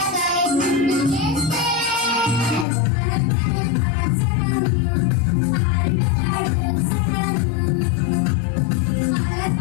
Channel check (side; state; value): right; drops out; at 2.7 s